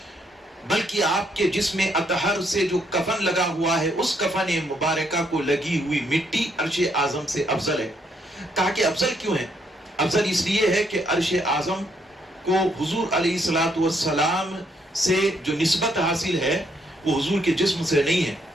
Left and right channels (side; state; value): both; normal; correlation 0.73